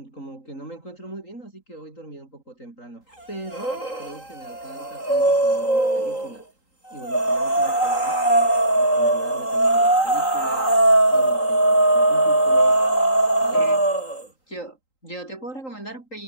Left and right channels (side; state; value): right; late; 3.8 ms